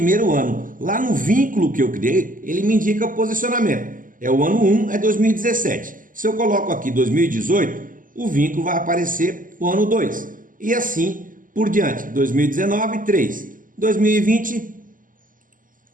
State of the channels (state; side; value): late; left; 0.39 ms